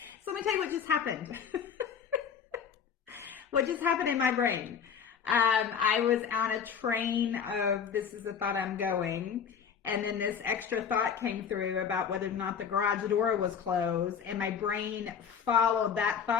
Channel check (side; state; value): right; quieter; 7.3 dB